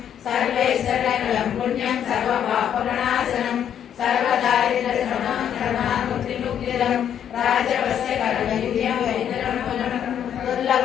सर्वैश्वर्यकलं पुण्यं सर्वपापप्रणाशनं सर्वदारिद्र्यशमनं राजवस्य कर्मयुज्यं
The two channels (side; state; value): right; quieter; 9.3 dB